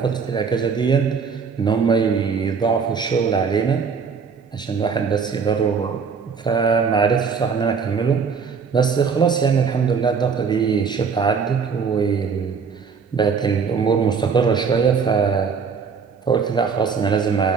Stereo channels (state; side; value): quieter; left; 5.8 dB